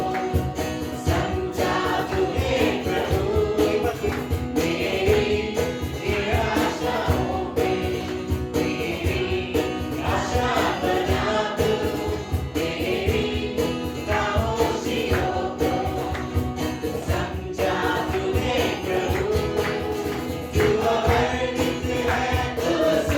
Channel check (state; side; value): identical; both; correlation 1.00